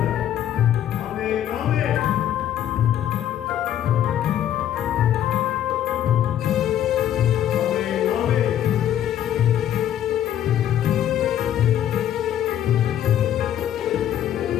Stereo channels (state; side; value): quieter; right; 11.0 dB